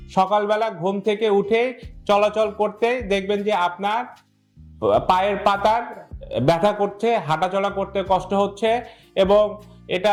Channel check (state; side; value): identical; both; correlation 1.00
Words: সকালবেলা ঘুম থেকে উঠে চলাচল করতে দেখবেন যে আপনার পায়ের পাতার ব্যথা করছে, হাঁটাচলা করতে কষ্ট হচ্ছে এবং